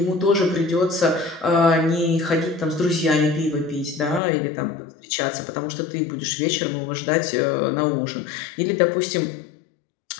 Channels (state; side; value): drops out; right; at 4.2 s